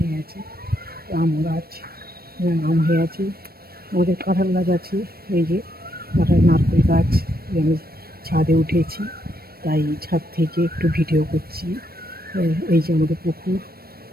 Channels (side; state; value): left; late; 0.44 ms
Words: আছে। আম গাছ, আম হয়ে আছে। আমাদের কাঁঠাল গাছ আছে, এই যে কাঁঠাল, নারকেল গাছ। আমি ছাদে উঠেছি, তাই ছাদ থেকে একটু ভিডিও করছি। এই যে আমাদের পুকুর,